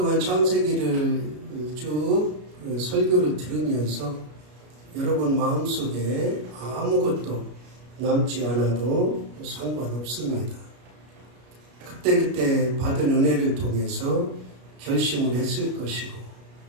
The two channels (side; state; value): left; late; 33 ms